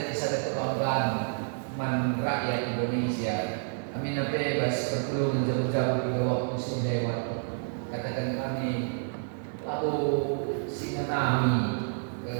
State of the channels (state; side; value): silent; left; digital silence